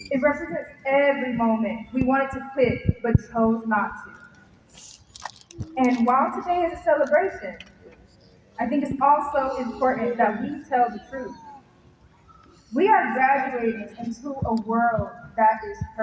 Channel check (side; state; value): both; identical; correlation 1.00